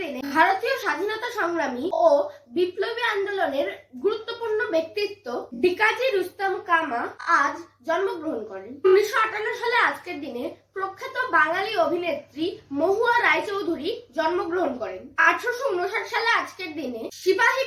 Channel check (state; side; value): identical; both; correlation 1.00